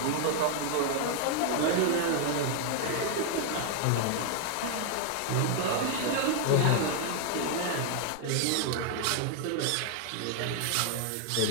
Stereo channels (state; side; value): different; both; correlation 0.00